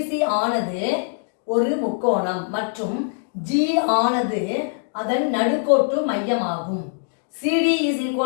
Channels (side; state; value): right; silent; digital silence